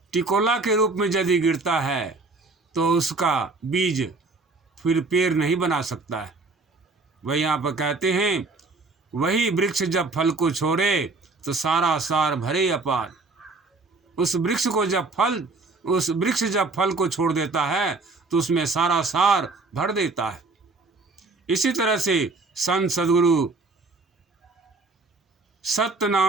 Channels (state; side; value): quieter; left; 3.6 dB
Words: टिकोला के रूप में यदि गिरता है तो उसका बीज फिर पेड़ नहीं बना सकता है। वही यहाँ पर कहते हैं वही वृक्ष जब फल को छोड़े तो सारा सार भरे अपार। उस वृक्ष जब फल को छोड़ देता है तो उसमें सारा सार भर देता है। इसी तरह से संत सद्गुरु सत्य